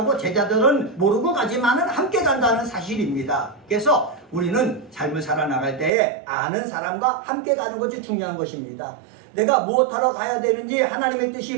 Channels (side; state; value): left; drops out; at 5.9 s